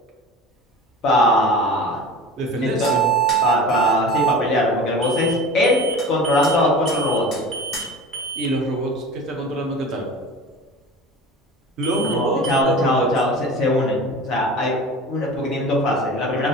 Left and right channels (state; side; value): normal; both; correlation 0.37